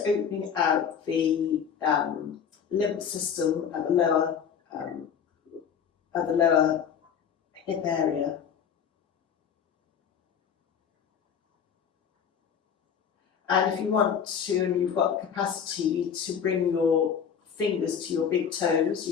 opening out the lymph system at the lower hip area. And if you want to, and you've got the capacity to bring your fingers to your big toes.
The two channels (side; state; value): right; quieter; 7.5 dB